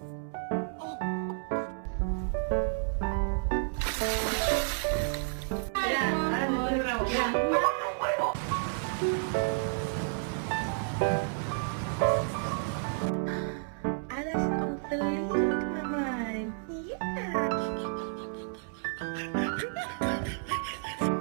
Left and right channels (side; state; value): left; silent; 57 dB below the other